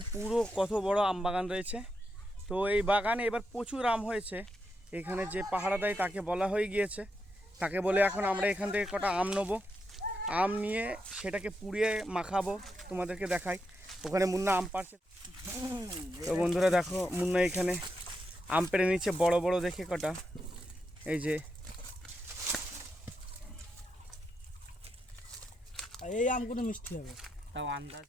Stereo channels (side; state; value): both; normal; correlation 0.84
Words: পুরো কত বড় আম বাগান রয়েছে। তো এই বাগানে এবার প্রচুর আম হয়েছে। এখানে যে পাহারা দেয় তাকে বলা হয়ে গিয়েছে, তাকে বলে এখন আমরা এখান থেকে কটা আম নেবো। আম নিয়ে সেটাকে পুড়িয়ে মাখাবো, তোমাদেরকে দেখাই। ওখানে মুন্না আম পাড়ছে। তো বন্ধুরা দেখো মুন্না এখানে আম পেড়ে নিচ্ছে বড় বড় দেখে কটা। এই যে এই আমগুলো মিষ্টি হবে তাও আন্দাজ।